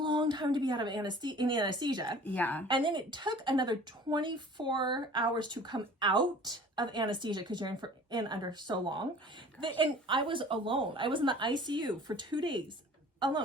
time to be out of anesthesia. Yeah. And then it took another 24 hours to come out of anesthesia because you're in under so long. And I was alone. I was in the ICU for 2 days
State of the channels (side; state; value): both; normal; correlation 0.46